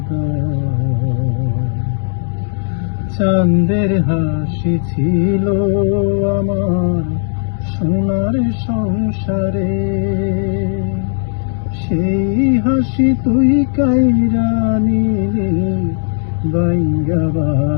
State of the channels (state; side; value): silent; right; digital silence